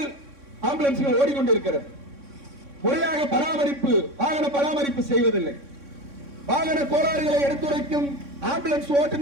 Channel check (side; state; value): left; late; 3.6 ms